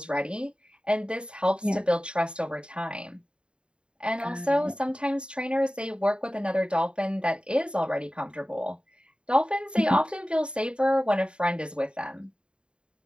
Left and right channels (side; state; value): left; late; 0.053 ms